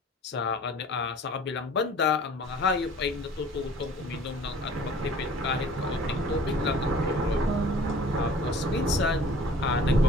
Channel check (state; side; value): normal; both; correlation 0.49